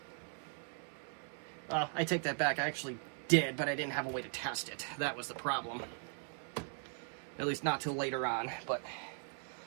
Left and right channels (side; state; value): left; silent; 52 dB below the other